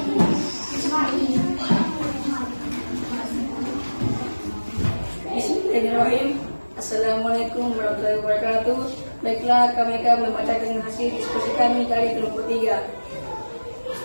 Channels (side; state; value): both; inverted; correlation -1.00